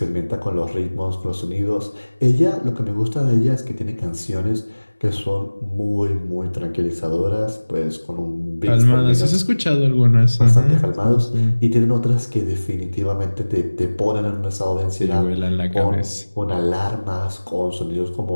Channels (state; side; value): inverted; both; correlation -1.00